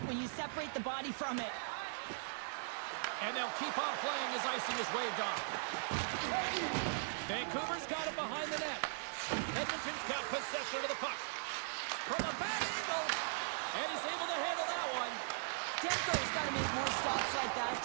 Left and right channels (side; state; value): left; silent; 52 dB below the other